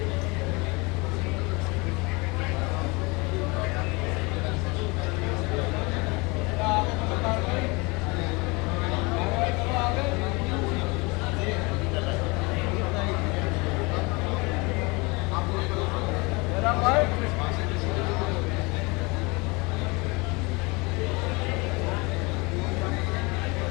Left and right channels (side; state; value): right; quieter; 26.7 dB